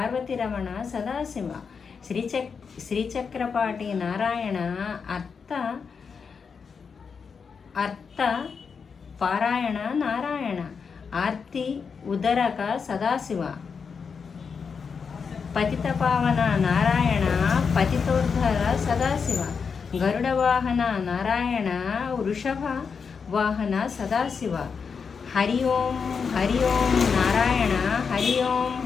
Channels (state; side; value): quieter; right; 5.8 dB